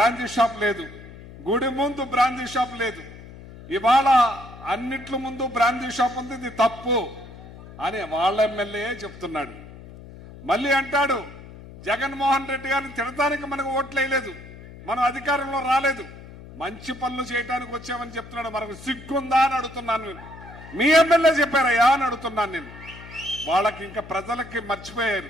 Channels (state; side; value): noise; left; hum, 17 dB below the sound